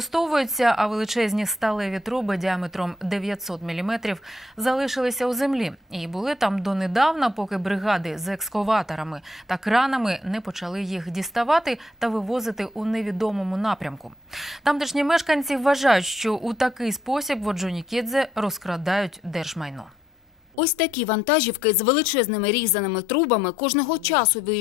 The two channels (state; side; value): normal; both; correlation 0.74